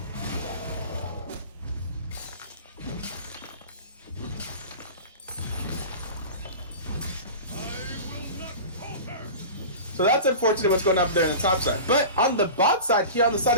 So that's unfortunate what's going on up there on the top side. But on the bot side, here on the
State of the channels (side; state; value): both; inverted; correlation -0.33